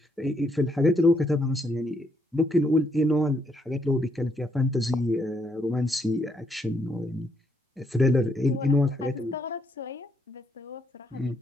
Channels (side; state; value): both; normal; correlation 0.73